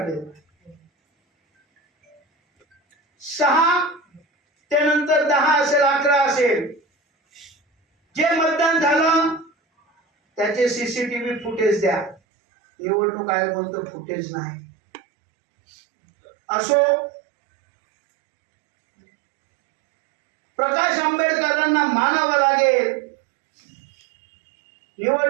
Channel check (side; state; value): left; drops out; at 12.2 s